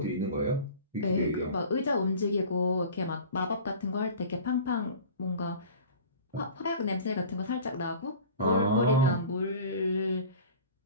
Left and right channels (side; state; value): both; inverted; correlation -0.40